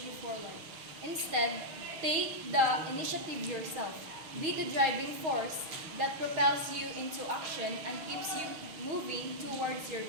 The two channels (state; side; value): late; left; 6.3 ms